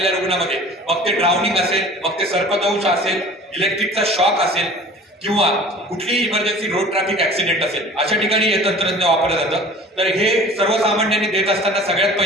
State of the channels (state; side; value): normal; both; correlation 0.44